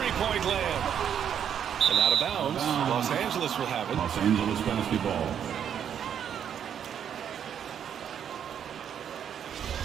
land. And out of bounds. Los Angeles will have it. Los Angeles basketball.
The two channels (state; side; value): quieter; left; 8.7 dB